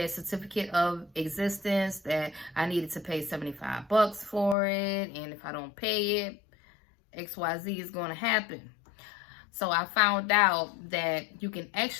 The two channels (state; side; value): drops out; right; at 4.5 s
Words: certificate of existence, that I needed to pay $75 for it, and if I don't pay it, XYZ is going to happen. So I found out that you can